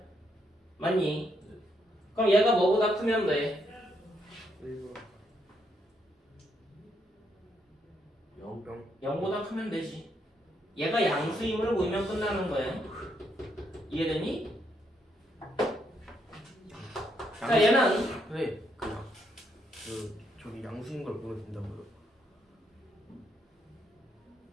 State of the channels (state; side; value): normal; both; correlation 0.76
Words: 맞니? 그럼 얘가 뭐보다 크면 돼? 0보다 크면 되지. 얘가 양수임을 보이면 끝나는 거야. 이해되니? 자, 얘는 왜? 저기 양수인 걸 보면 된다고요?